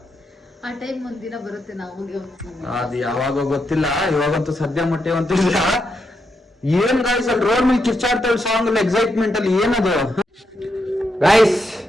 ಆ ಟೈಮ್ ಒಂದಿನ ಬರುತ್ತೆ, ನಾವು ಅದು ಯಾವಾಗ ಗೊತ್ತಿಲ್ಲ, ಇವಾಗಂತೂ ಸದ್ಯ ಮಟ್ಟಿವಂತಿಲ್ಲ. ಏನ್ ಗಾಯ್ಸ್, ಅಲ್ಲಿ ರೋಡ್ ಮೇಲೆ ಕಿರ್ಚಾಡ್ತಾಳೆ ಸಾಂಗ್ ಅಲ್ಲಿ, ಎಕ್ಸೈಟ್ಮೆಂಟ್ ಅಲ್ಲಿ ಏನದು. ಗಾಯ್ಸ್,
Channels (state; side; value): normal; both; correlation 0.82